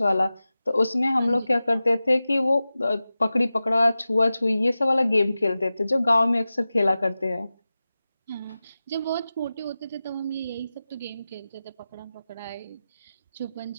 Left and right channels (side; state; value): both; inverted; correlation -0.95